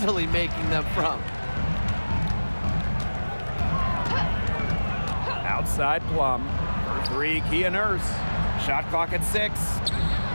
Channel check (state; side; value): inverted; both; correlation -1.00